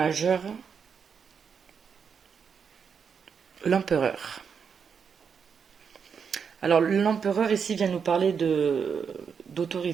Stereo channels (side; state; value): left; quieter; 6.5 dB